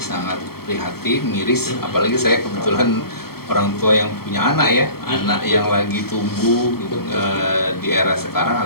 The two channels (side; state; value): right; late; 0.94 ms